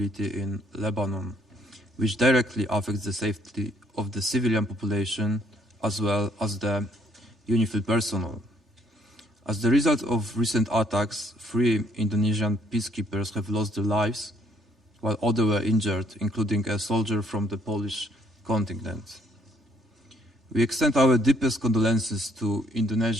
in Lebanon, which directly affects the safety of the civilian population as well as the UNIFIL personnel. As the result of recent attacks, 3 Indonesian peacekeepers have lost their lives, while others were injured, including a soldier from the Polish contingent. We extend our deepest condolences to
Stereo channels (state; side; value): normal; both; correlation 0.66